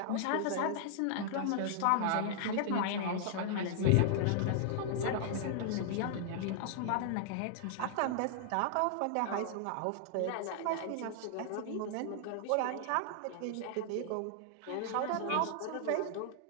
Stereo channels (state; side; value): different; both; correlation -0.01